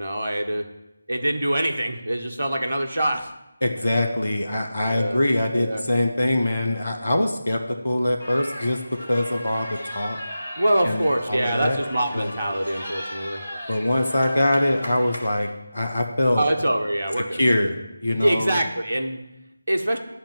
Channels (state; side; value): inverted; both; correlation -0.93